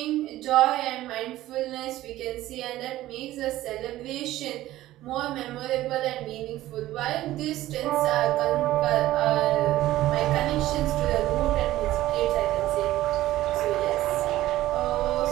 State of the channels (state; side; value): quieter; left; 15.3 dB